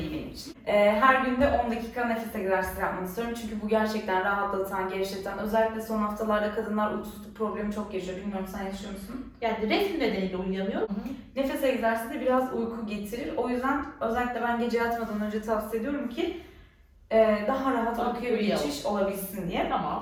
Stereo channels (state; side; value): identical; both; correlation 1.00